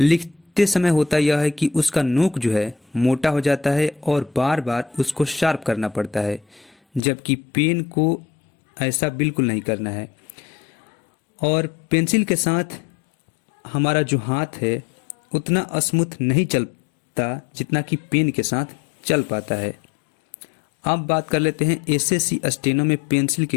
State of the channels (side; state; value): right; drops out; at 7.0 s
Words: समय होता यह है कि उसका नोक जो है मोटा हो जाता है और बार बार उसको शार्प करना पड़ता है, जबकि पेन को ऐसा बिल्कुल नहीं करना है। और पेंसिल के साथ हमारा जो हाथ है उतना स्मूथ नहीं चलता जितना कि पेन के साथ चल पाता है। अब बात कर लेते हैं एसएससी स्टेनो में पेंसिल